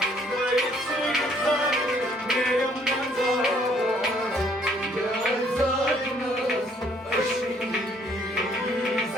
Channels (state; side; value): normal; both; correlation 0.64